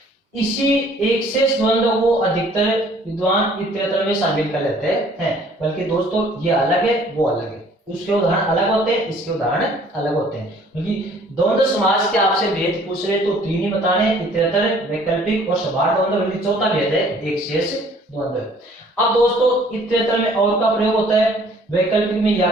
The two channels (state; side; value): normal; both; correlation 0.56